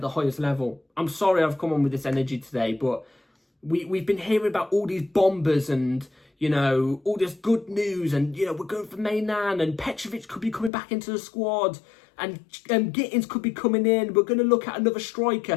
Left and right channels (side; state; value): right; drops out; at 10.7 s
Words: the highest level. I'm sorry I've come on with this energy today, but we've been hearing about all these bombers and, you know, all this good news. And, you know, we're going for Maignan and Petrovic could be coming back into the squad. And Gittens could be coming in. We're going to look at another